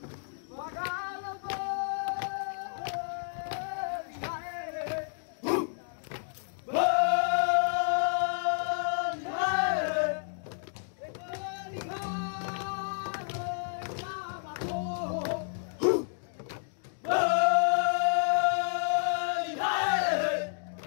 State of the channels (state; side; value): silent; right; digital silence